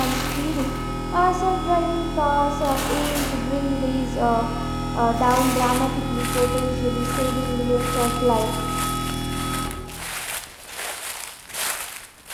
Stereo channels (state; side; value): identical; both; correlation 1.00